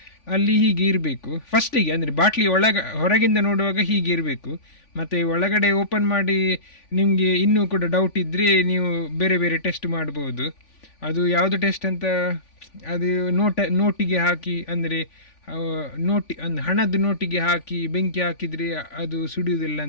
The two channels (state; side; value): late; right; 3.5 ms